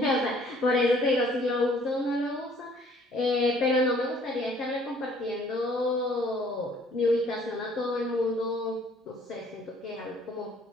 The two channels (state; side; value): normal; both; correlation 0.58